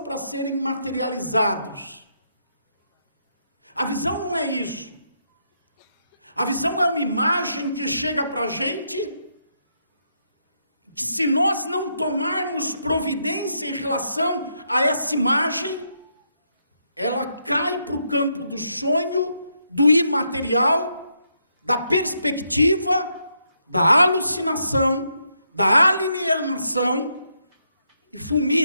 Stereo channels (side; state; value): both; inverted; correlation -0.79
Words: para serem materializados. A visão não é isso. A visão é uma imagem que chega para a gente, que se nós não tomarmos providência em relação a essa imagem, ela cai para o campo do sonho, do imaterial, da perspectiva, da alucinação, da alienação, e